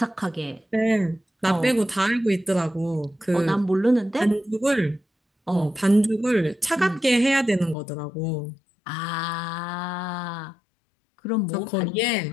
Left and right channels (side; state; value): right; drops out; at 7.8 s